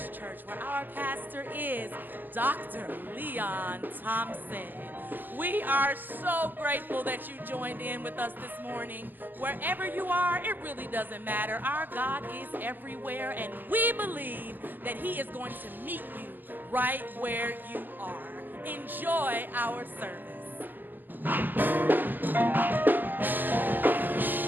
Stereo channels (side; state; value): left; late; 0.090 ms